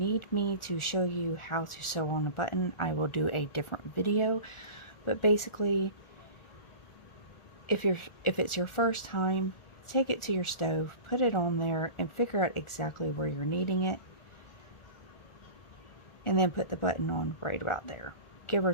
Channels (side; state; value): right; late; 1.4 ms